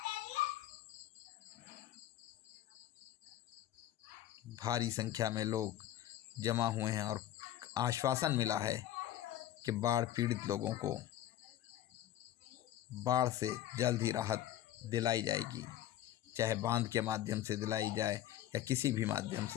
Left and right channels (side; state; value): right; quieter; 12.4 dB